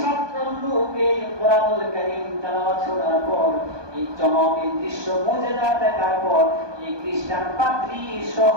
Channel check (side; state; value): left; late; 1.2 ms